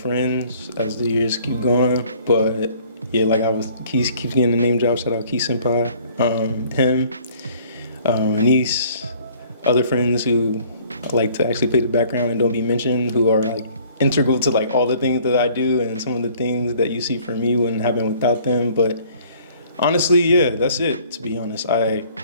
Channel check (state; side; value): inverted; both; correlation -0.56